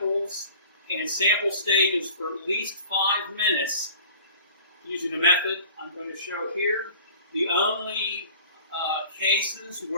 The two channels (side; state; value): both; inverted; correlation -0.45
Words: and sample stages for at least 5 minutes using the method I'm going to show here. The only cases